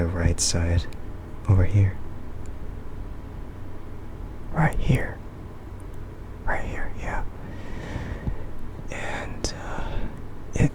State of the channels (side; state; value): both; identical; correlation 1.00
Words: right side over here. Right here. Right here, yeah. And it